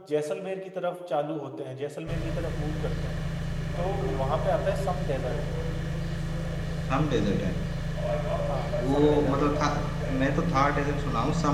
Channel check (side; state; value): both; identical; correlation 1.00